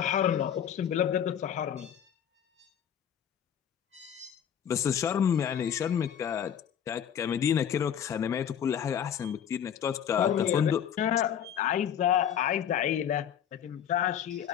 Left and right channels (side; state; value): right; quieter; 9.0 dB